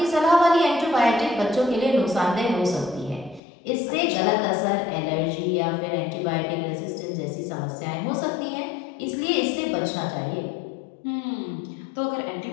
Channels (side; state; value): right; drops out; at 3.4 s